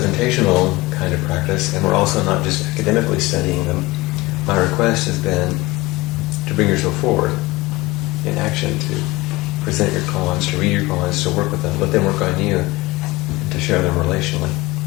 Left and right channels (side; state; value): right; quieter; 21.1 dB